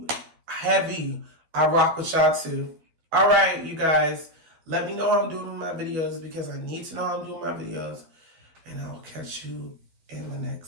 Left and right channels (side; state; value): left; late; 12 ms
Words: heavy, I rock with y'all too. All right, you guys, let me know how I'm doing my videos because I need to know how I'm doing my videos. And I'll catch you in the